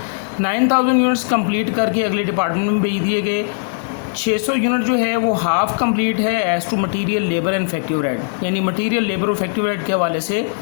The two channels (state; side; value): silent; right; 64 dB below the other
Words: 9,000 units complete करके अगले डिपार्टमेंट में भेज दिए गए। 600 यूनिट जो है वो हाफ कंप्लीट है as to material, labour and effective rate, यानी मटेरियल, लेबर और इफेक्टिव रेट के हवाले से